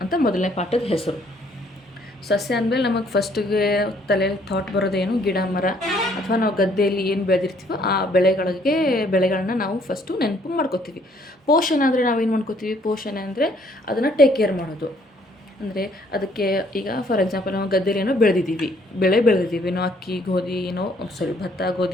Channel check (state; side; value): normal; both; correlation 0.64